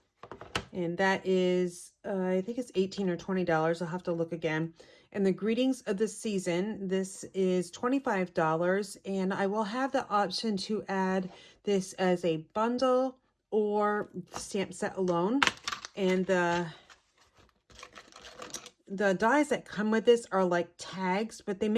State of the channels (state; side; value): identical; both; correlation 1.00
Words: And that is, I think it's $18 or $20. I'll have to look again. And the Greetings of the Season, this is $25. And I will have the option to add this as a bundle or stamp set alone. And the dies that come with this are like tags, but they